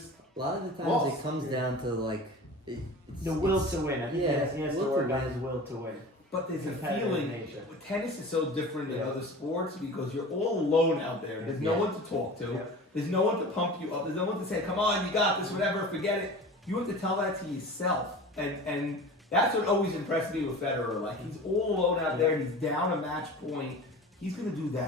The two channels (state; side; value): normal; both; correlation 0.37